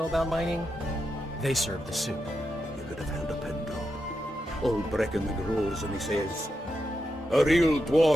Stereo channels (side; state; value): both; normal; correlation 0.86